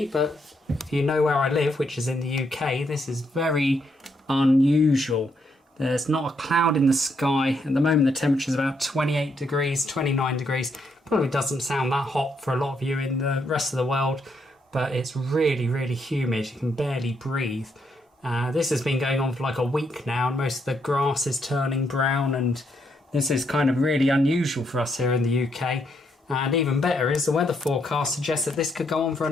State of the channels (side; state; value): both; normal; correlation 0.76